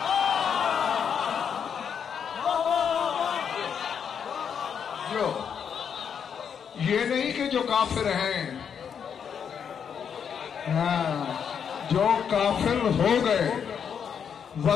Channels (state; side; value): quieter; right; 7.4 dB